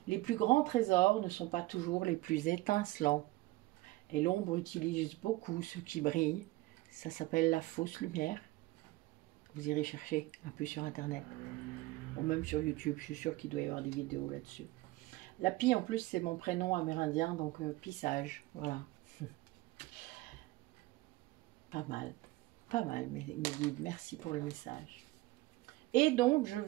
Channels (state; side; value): quieter; left; 19.8 dB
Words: Les plus grands trésors ne sont pas toujours les plus étincelants. Et l'ombre utilise beaucoup ce qui brille. Ça s'appelle la fausse lumière. Vous irez chercher un peu sur Internet. Ou même sur YouTube, je suis sûre qu'il doit y avoir des vidéos là-dessus. La Pie, en plus, c'est mon prénom amérindien, donc Pie-Sage. Voilà. Pas mal, mes guides. Merci pour le message. Et donc, je